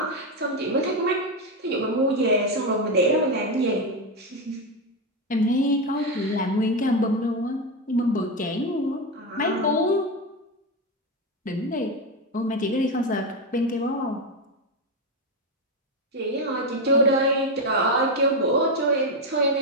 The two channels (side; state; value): both; normal; correlation 0.09